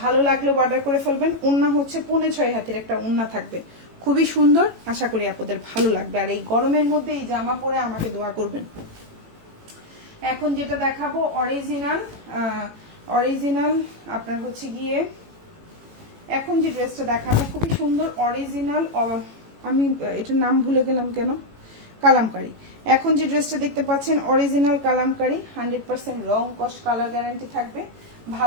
ভালো লাগলে অর্ডার করে ফেলবেন। ওড়না হচ্ছে 6.5 হাতের একটা ওড়না থাকবে, খুবই সুন্দর। আশা করি আপনাদের ভালো লাগবে, আর এই গরমের মধ্যে এই জামা পরে আমাকে দোয়া করবেন। এখন যেটা দেখাবো অরিজিনাল আপনার হচ্ছে গিয়ে, এখন যে ড্রেসটা দেখাবো খুবই সুন্দর অরিজিনাল, আমি এটার নাম ভুলে গেলাম কেন, কালামকারী। এখন যে ড্রেসটা দেখতে পাচ্ছেন অরিজিনাল কালামকারী, 100% রং কস কালার গ্যারান্টি থাকবে।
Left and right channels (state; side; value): late; left; 18 ms